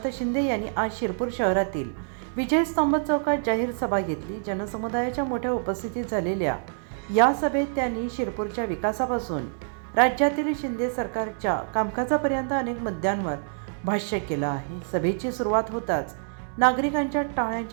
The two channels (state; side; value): silent; left; digital silence